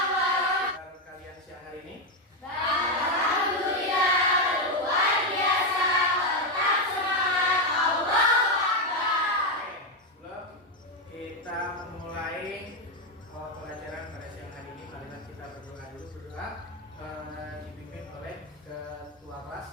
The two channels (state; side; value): normal; both; correlation 0.06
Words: warahmatullahi wabarakatuh. Kalian siang hari ini? Alhamdulillah luar biasa. Tetap semangat. Allahu Akbar. Sebelum kita memulai pelajaran pada siang hari ini, marilah kita berdoa dulu. Berdoa dipimpin oleh ketua